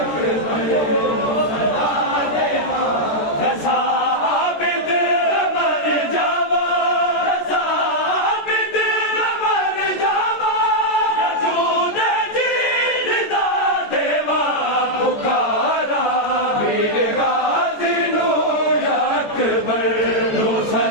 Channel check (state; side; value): late; right; 14 ms